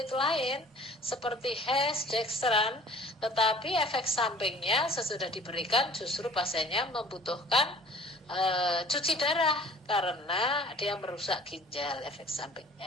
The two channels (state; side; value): normal; both; correlation 0.49